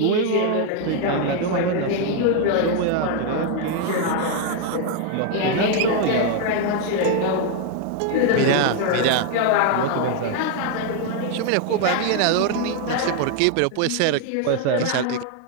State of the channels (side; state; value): both; different; correlation 0.00